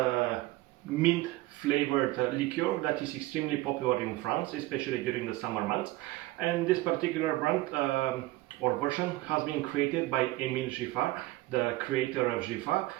mint flavored liqueur that is extremely popular in France, especially during the summer months. And this particular brand or version has been created by Emile Giffard, the creator of Giffard,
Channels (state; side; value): quieter; left; 18.6 dB